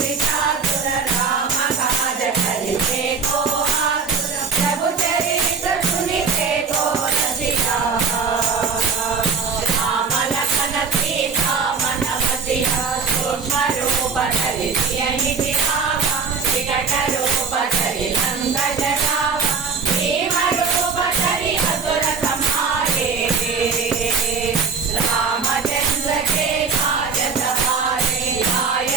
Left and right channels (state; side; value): quieter; left; 5.2 dB